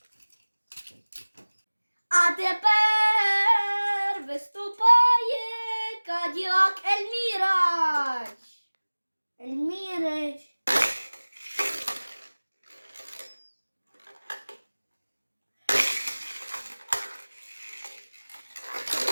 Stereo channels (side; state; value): both; inverted; correlation -1.00